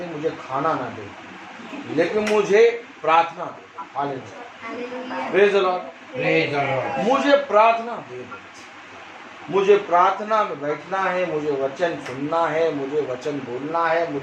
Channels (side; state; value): both; identical; correlation 1.00